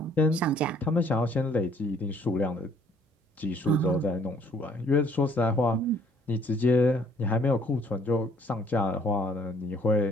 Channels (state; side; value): normal; both; correlation 0.61